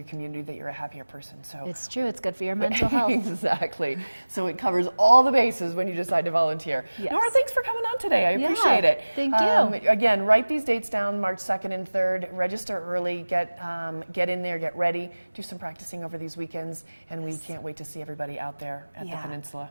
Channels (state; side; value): inverted; both; correlation -1.00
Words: community, that you're a happier person. So it's true. It's good for your mental health. Exactly. So it covers all the bases when you decide to volunteer. Yes. Nora, thanks for coming on today. I appreciate it. Thank you. Again, write these dates down: March 2nd and 3rd. Register early. Get in there. Get ready. Do some practicing over these weekends, and we can't wait to see everybody out there at the peninsula.